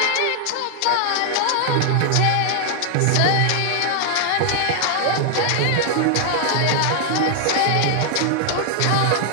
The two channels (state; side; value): different; both; correlation 0.00